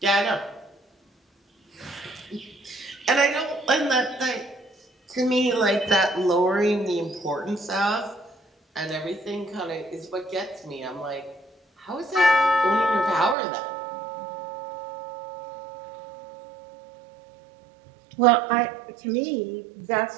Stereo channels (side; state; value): left; drops out; at 13.4 s